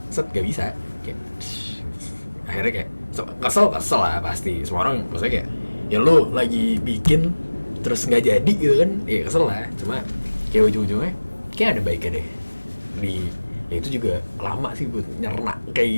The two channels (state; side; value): inverted; both; correlation -1.00